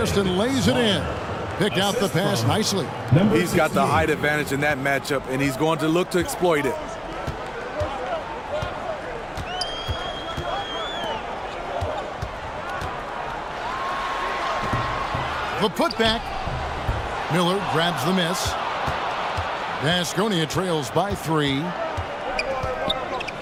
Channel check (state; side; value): identical; both; correlation 1.00